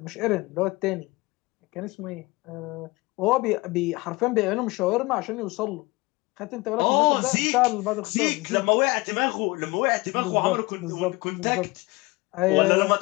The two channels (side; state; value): right; quieter; 23.5 dB